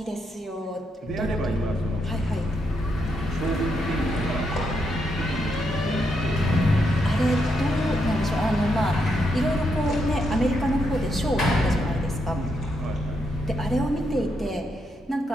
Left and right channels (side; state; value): both; normal; correlation 0.80